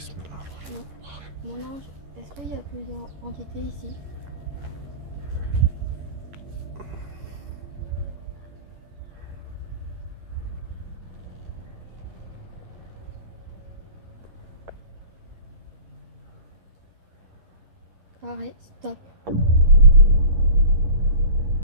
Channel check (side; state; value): left; late; 11 ms